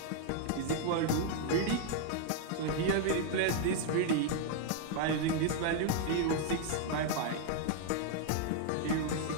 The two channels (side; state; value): both; different; correlation 0.00